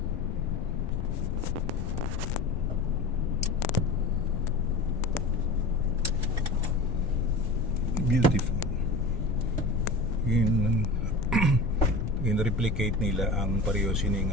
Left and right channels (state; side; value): noise; left; rumble, 5 dB below the sound